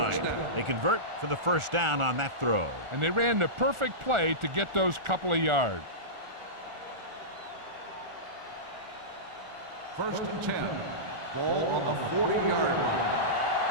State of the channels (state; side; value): late; left; 1.4 ms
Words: They convert for the first down on that throw. And they ran the perfect play to get those couple of yards. First and 10. Ball on the 40-yard line.